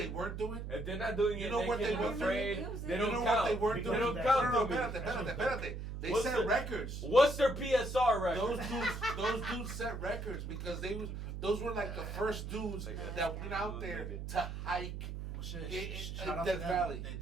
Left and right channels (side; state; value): right; noise; hum, 6 dB below the sound